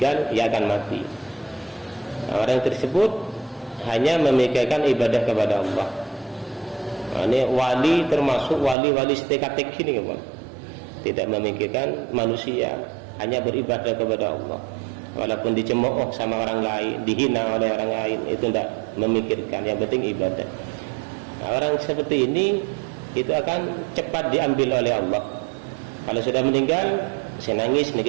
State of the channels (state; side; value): drops out; left; at 8.8 s